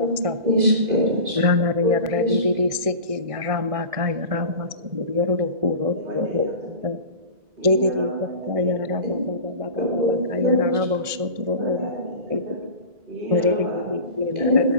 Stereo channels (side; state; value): left; late; 1.6 ms